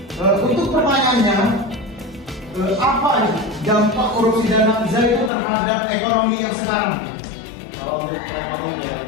Untuk pertanyaannya, apa dampak korupsi dan nafza itu terhadap ekonomi yang sekarang? Kalau untuk ekonomi yang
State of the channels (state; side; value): drops out; right; at 5.3 s